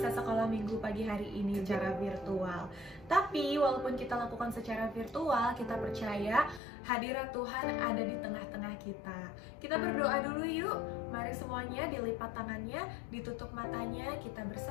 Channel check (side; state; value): right; drops out; at 6.6 s